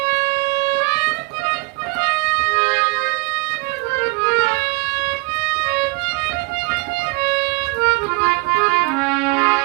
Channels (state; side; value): quieter; left; 26.8 dB